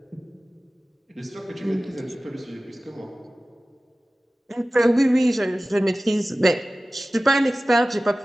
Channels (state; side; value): normal; both; correlation 0.97